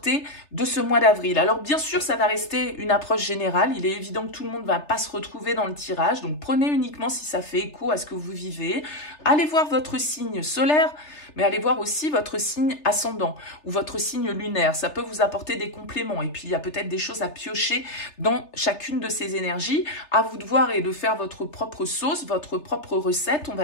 de ce mois d'avril. Alors bien sûr, ça va rester une approche générale. Il est évident que tout le monde ne va pas se retrouver dans le tirage, donc prenez uniquement si ça fait écho à ce que vous vivez. Allez voir votre signe solaire, mais allez voir aussi votre signe ascendant ou votre signe lunaire. Ça peut vous apporter des compléments. Et puis, il y a peut-être des choses à piocher dans chacune de ces énergies. À vous de voir et de faire votre propre sauce, votre propre recette, on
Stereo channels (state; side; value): late; right; 3.3 ms